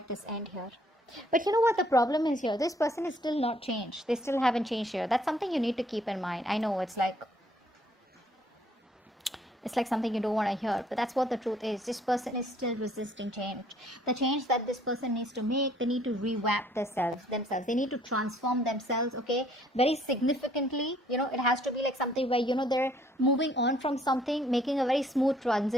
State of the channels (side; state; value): both; normal; correlation 0.62